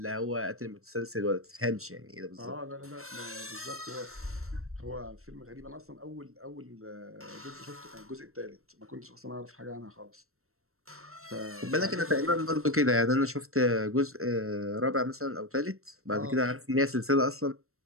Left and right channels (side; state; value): left; late; 0.63 ms